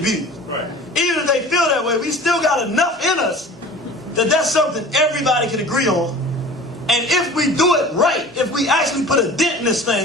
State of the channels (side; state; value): both; normal; correlation 0.42